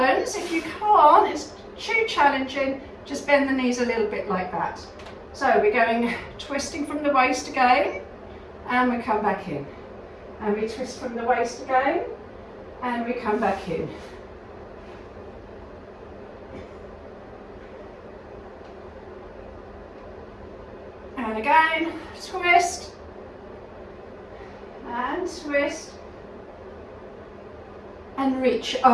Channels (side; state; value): both; identical; correlation 1.00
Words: If you can't, it's too challenging, just bend the knees a little bit like that. So we're going twisting from the waist again, and we come back in. And we twist from the waist again, and we come back in. And again, twist, and twist, and reach